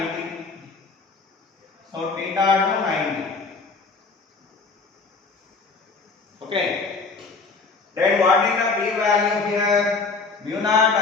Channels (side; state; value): right; quieter; 4.3 dB